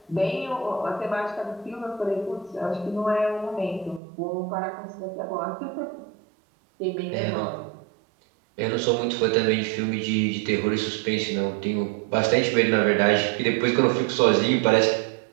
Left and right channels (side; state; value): left; drops out; at 4.0 s